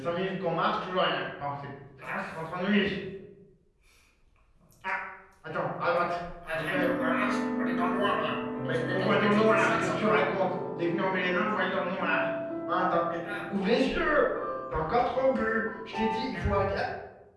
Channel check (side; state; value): both; identical; correlation 1.00